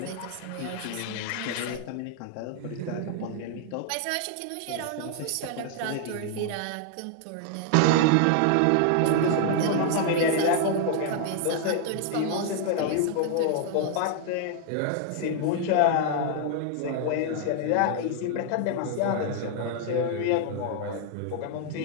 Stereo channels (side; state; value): both; different; correlation 0.00